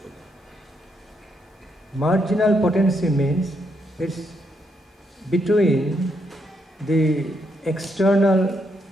Marginal potency means it's between the external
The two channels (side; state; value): both; normal; correlation 0.77